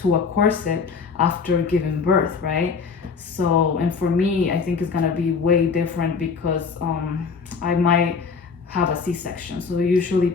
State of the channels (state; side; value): quieter; right; 5.3 dB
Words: a corset after giving birth, right? So, and for me, I think it's gonna be way different because I might have a C-section. So usually